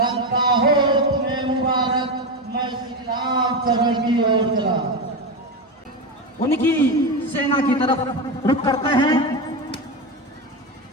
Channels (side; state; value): both; normal; correlation 0.15